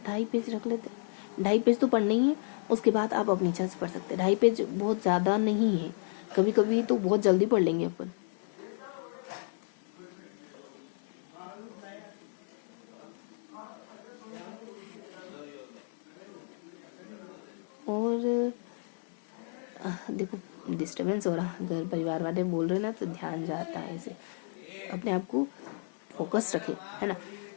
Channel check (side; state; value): right; silent; 56 dB below the other